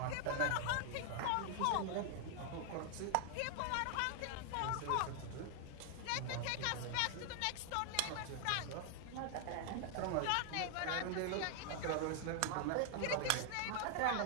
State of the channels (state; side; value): different; both; correlation 0.00